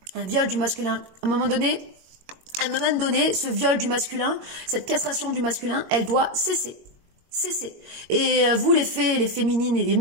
Un viol du masculin. À un moment donné, ce viol du masculin, cette castration du masculin, elle doit cesser. Cessez. Et vous, les fées, les féminines et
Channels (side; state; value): left; late; 22 ms